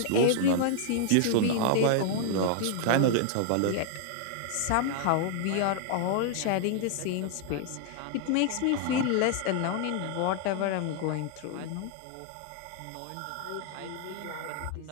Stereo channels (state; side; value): different; both; correlation 0.00